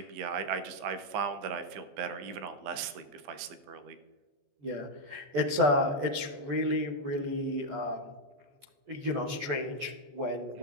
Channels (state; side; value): late; left; 14 ms